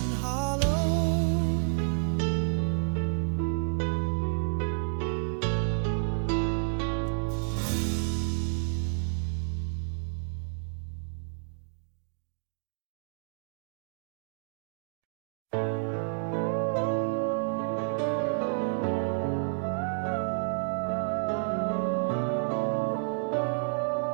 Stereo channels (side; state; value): left; silent; digital silence